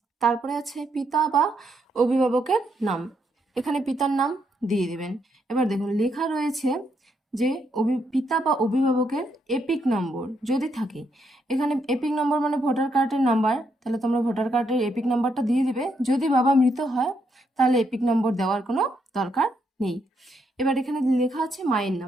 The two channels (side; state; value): both; normal; correlation 0.77